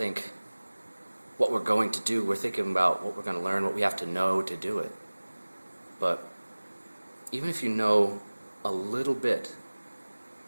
what we're going to do. We're thinking about what we're going to learn, what we have to know to do it. But even if you know a little bit,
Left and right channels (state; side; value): inverted; both; correlation -1.00